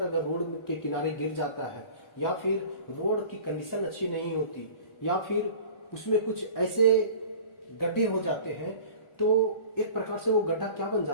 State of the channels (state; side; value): late; right; 1.4 ms